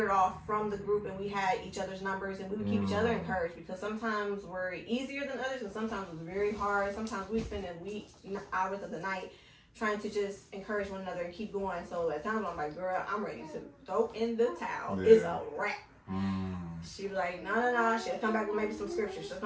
off from the group, and we had each other's numbers, and we would keep each other encouraged, because sometimes we're easier than others, and sometimes it's very hard. Sometimes we spend hours of the night trying to just encourage one another and keep going. So at times I'm like, girl, I'm ready to throw in the towel. Yeah. It's a wrap. She'd be like, no. She'll come back with maybe some scripture. She'll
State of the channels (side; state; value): both; identical; correlation 1.00